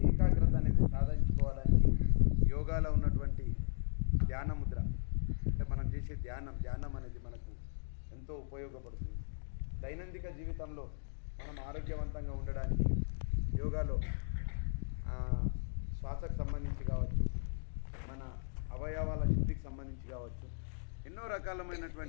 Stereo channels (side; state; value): right; silent; digital silence